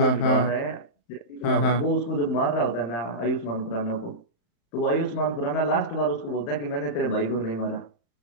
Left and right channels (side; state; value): right; late; 35 ms